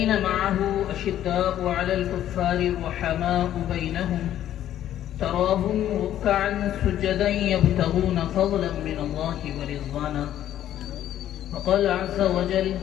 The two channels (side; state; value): right; quieter; 11.7 dB